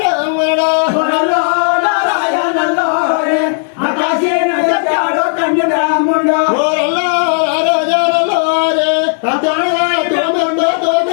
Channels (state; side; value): silent; right; digital silence